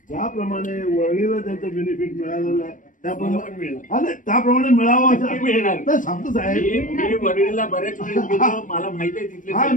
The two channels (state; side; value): late; right; 0.38 ms